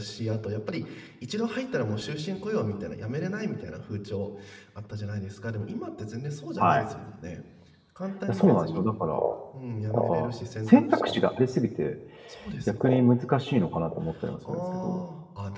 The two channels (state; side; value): identical; both; correlation 1.00